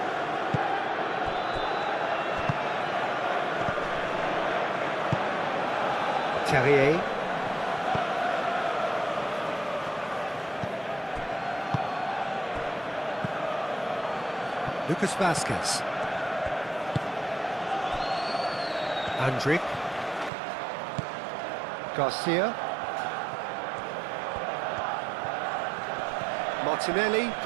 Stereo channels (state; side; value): drops out; left; at 20.3 s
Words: Terrier. Lucas Vazquez. Andrick. Garcia. Martinelli